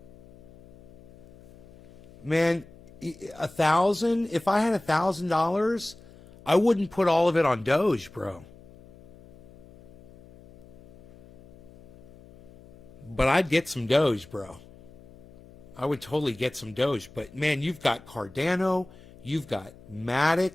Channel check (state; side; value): noise; left; hum, 22 dB below the sound